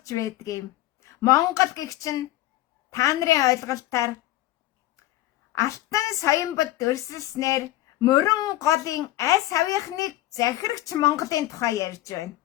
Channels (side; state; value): right; quieter; 15.6 dB